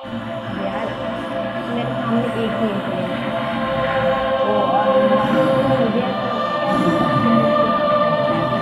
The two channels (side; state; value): both; identical; correlation 1.00